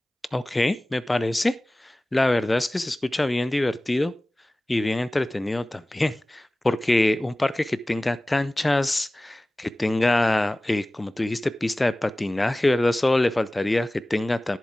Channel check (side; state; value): both; normal; correlation 0.98